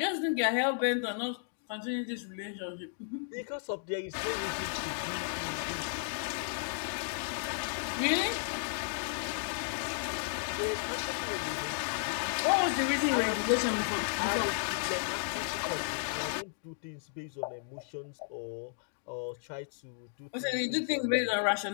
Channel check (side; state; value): right; silent; digital silence